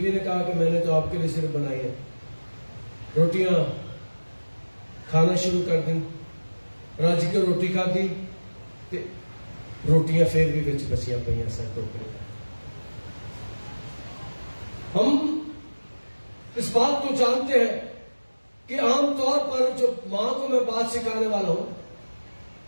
نے کہا کہ میں نے تو آپ کے لیے صرف بنائی ہے. روٹیاں کھانا شروع کر دیں. راجی کو روٹی کھا دی تے روٹیاں پھر بھی بچ بچیاں پہ سر ٹوکرے. ہم اس بات کو جانتے ہیں کہ عام طور پر جو ماں کو میں بات سکھانے والا ہوں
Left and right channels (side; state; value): both; inverted; correlation -1.00